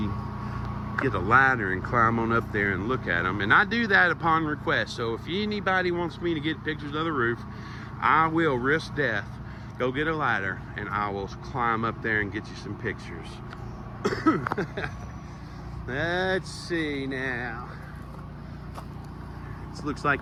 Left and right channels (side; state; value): both; identical; correlation 1.00